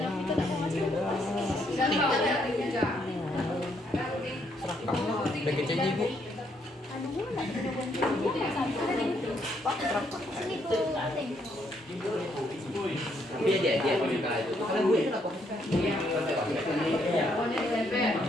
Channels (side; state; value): both; normal; correlation 0.73